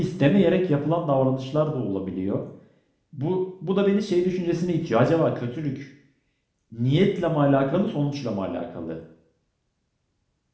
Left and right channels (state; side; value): identical; both; correlation 1.00